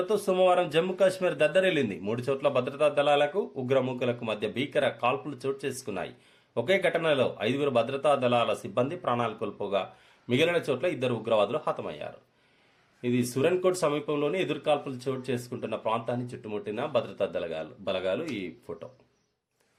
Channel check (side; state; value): both; identical; correlation 1.00